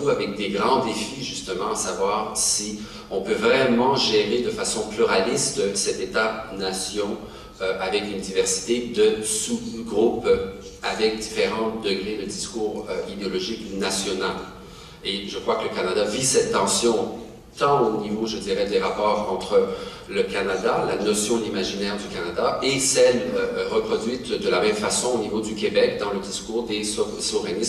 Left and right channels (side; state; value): both; identical; correlation 1.00